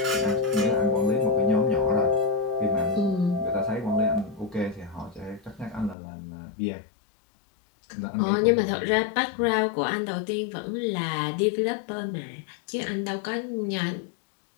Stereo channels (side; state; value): right; drops out; at 6.0 s